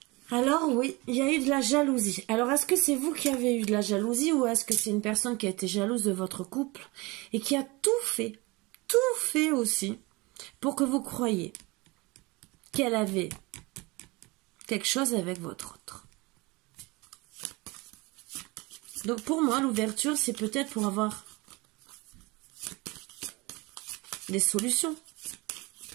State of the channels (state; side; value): quieter; left; 24.5 dB